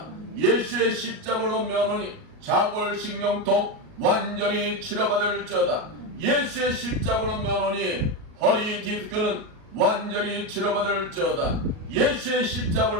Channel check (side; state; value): left; late; 38 ms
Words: 예수의 십자가로 명하노니 자골신경통 완전히 치료받을지어다. 예수의 십자가로 명하노니 허리 디스크는 완전히 치료받을지어다. 예수의